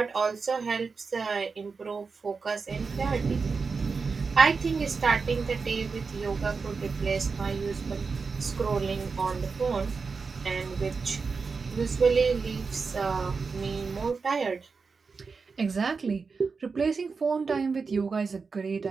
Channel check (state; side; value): quieter; left; 4.8 dB